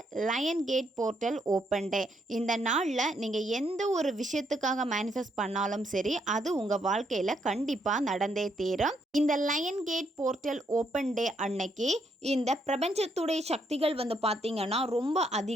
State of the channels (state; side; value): normal; both; correlation 0.75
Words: lion gate portal open day. இந்த நாளில் நீங்கள் எந்த ஒரு விஷயத்துக்காக மேனிஃபெஸ்ட் பண்ணாலும் சரி அது உங்கள் வாழ்க்கையில் கண்டிப்பாக நடந்தே தீரும். இந்த lion gate portal open day அன்னைக்கு இந்த பிரபஞ்சத்துடைய சக்திகள் பார்த்தீங்கன்னா ரொம்ப